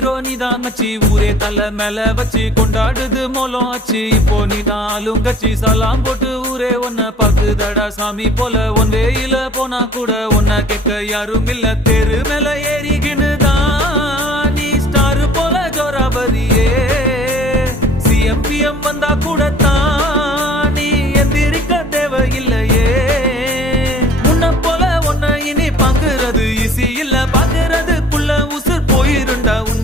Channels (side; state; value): both; normal; correlation 0.50